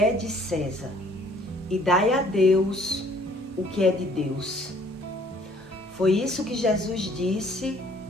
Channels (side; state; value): both; normal; correlation 0.59